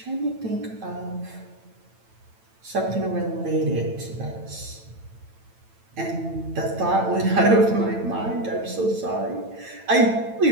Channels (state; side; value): late; left; 9.0 ms